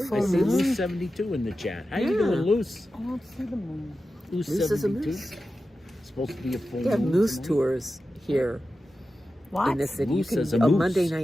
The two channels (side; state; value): both; normal; correlation 0.92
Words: Full I see moon. Loose. Loose 72 in the chat. How you Yeah. doing, Loose? I don't see the moon. Loose Loose is a 72. moose. Supposed to be a full They have moon moose tonight. tours here What? in the city. Moose You is a can, on moose. Monday